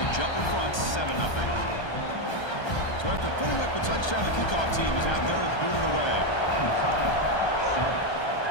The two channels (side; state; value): right; late; 1.3 ms